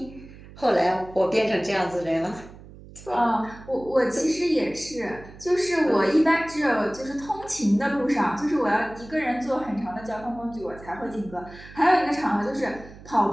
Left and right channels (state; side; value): noise; right; hum, 18 dB below the sound